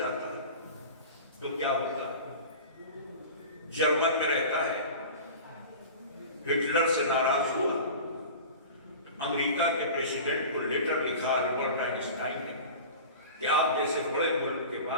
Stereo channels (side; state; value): both; inverted; correlation -0.35